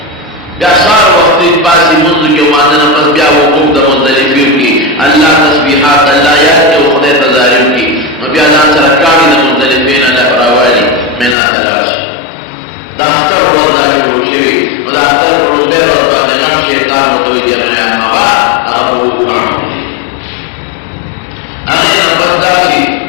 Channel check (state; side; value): drops out; right; at 11.4 s